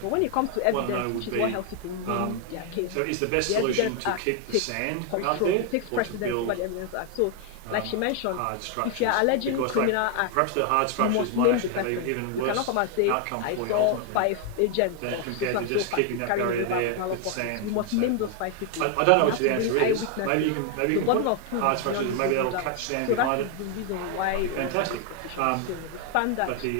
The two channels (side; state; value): both; different; correlation 0.00